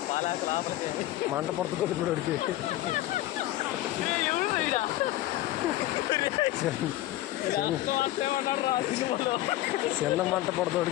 పాలాకు లోపలికి మంట పడుతుంది ఇప్పుడు వాడికి. చిన్న మంట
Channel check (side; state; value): right; quieter; 15.5 dB